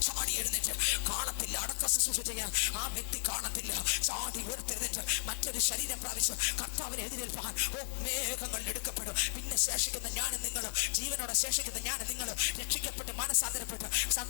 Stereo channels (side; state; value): right; silent; digital silence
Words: ചാടി എഴുന്നേറ്റ് കാണത്തില്ല. അടക്ക ശുശ്രൂഷ ചെയ്യാൻ ആ വ്യക്തി കാണത്തില്ല. ചാടി ഉയർത്തെഴുന്നേറ്റ് മറ്റൊരു ശരീരം പ്രാപിച്ച് കർത്താവിനെ എതിരേൽപ്പാൻ ഓ മേഘങ്ങൾ എടുക്കപ്പെടും. പിന്നെ ശേഷിക്കുന്ന ഞാനും നിങ്ങളും, ജീവനോടെ ശേഷിക്കുന്ന ഞാനും നിങ്ങളും രക്ഷിക്കപ്പെട്ട് മനസാന്തരപ്പെട്ട്